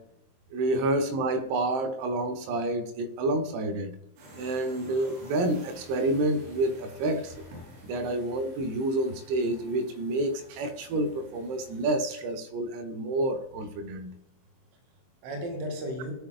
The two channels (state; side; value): late; left; 23 ms